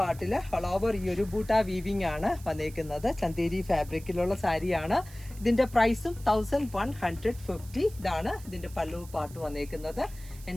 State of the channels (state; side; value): noise; right; hiss, 20 dB below the sound